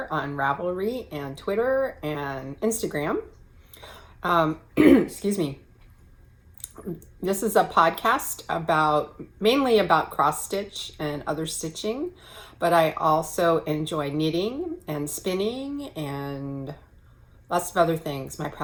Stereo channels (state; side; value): identical; both; correlation 1.00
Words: on Ravelry and Twitter and Instagram. Excuse me. This is a podcast mainly about cross stitch and other stitching, but I also enjoy knitting and spinning and lots of other things. My